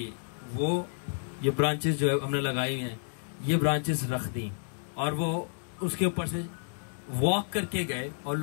वो ये ब्रांचेस जो है हमने लगाई हुई हैं, ये ब्रांचेस रख दी और वो उसके ऊपर से वॉक करके गए और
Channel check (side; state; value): right; silent; digital silence